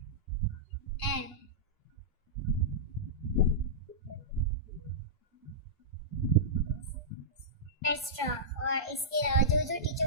एम. एक्स्ट्रा. और इसके अलावा जो जो टीचर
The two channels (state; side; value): normal; both; correlation -0.13